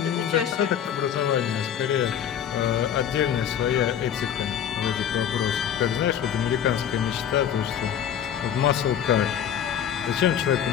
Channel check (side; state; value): right; quieter; 9.2 dB